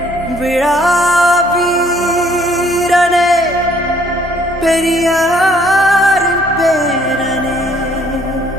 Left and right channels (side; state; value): both; normal; correlation 0.62